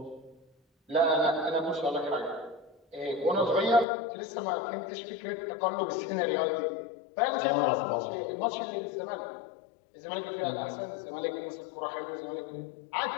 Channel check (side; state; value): right; drops out; at 3.9 s